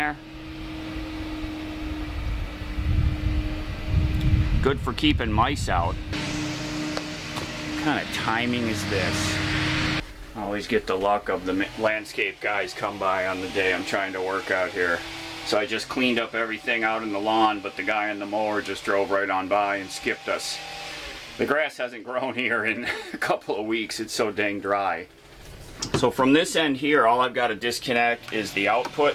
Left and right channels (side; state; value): both; identical; correlation 1.00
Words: Good for keeping mice out. What kind of timing is this? I always get the luck of the landscape guys come by on the day I'm trying to work out here. So I just cleaned up everything out in the lawn, but the guy on the mower just drove right on by and skipped us. The grass hasn't grown here in a couple of weeks. It's so dang dry. So from this end here, all I've got to disconnect is the output